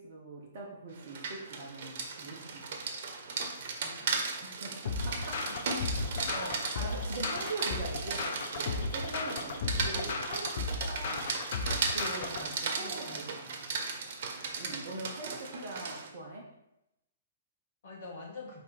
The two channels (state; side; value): inverted; both; correlation -0.52